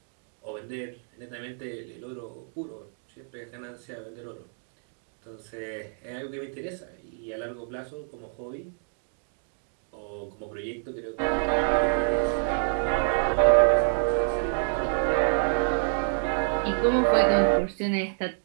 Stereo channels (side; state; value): left; silent; 59 dB below the other